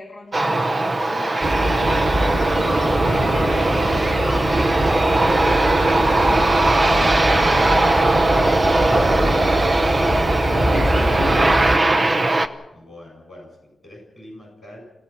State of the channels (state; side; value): normal; both; correlation 0.95